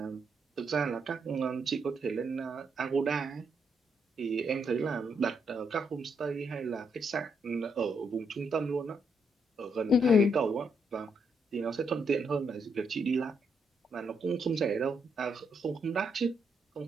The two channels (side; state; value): both; normal; correlation 0.77